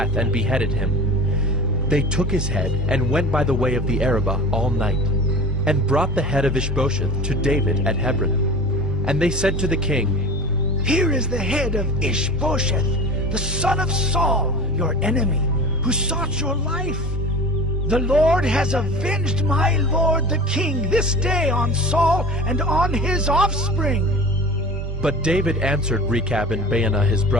and beheaded him. They took his head and went by the way of the Arabah all night, and brought the head of Ishbosheth to David at Hebron. And they said to the king, Here is the head of Ishbosheth, the son of Saul, your enemy, who sought your life. The Lord has avenged my lord the king this day on Saul and on his offspring. But David answered Rechab and Baanah his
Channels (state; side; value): noise; left; rumble, 20 dB below the sound